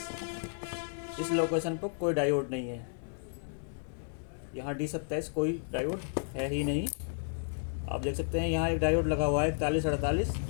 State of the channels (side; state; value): right; silent; digital silence